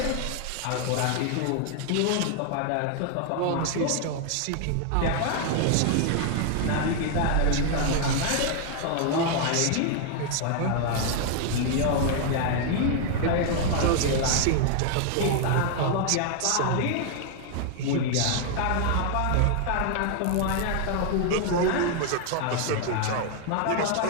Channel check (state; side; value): different; both; correlation 0.00